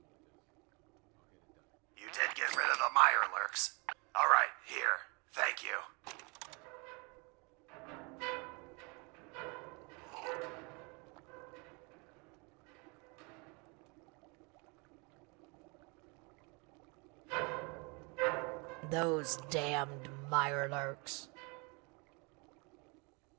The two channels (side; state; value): left; quieter; 30.5 dB